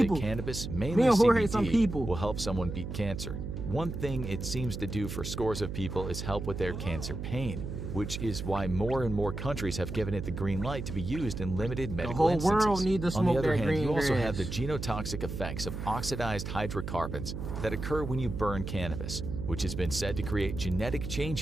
cannabis, mainly CBD, will help someone beat cancer. One thing it seems to do for scores of people is help with their cancer pain, which is why more and more countries have given it the green light to be used in limited medical instances. The whole world needs to smoke. On the other hand, green you also grass. have the genotoxic effects of oxidized hydrocarbons that occur when you burn cannabis, which has been said to create genetic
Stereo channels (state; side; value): noise; right; hum, 6 dB below the sound